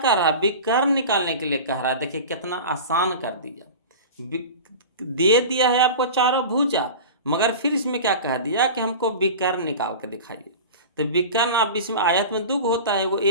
रहा है, विकर्ण निकालने के लिए कह रहा है। देखिए कितना आसान कर दिया, दे दिया है आपको चारों भुजा, मगर फिर इसमें क्या कह दिया कि हमको विकर्ण निकाल के दिखाइए। तो विकर्ण आप इसमें आयत में दो होता है, वो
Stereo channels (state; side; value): inverted; both; correlation -0.33